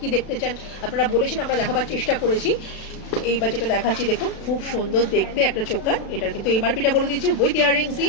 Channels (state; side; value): late; right; 36 ms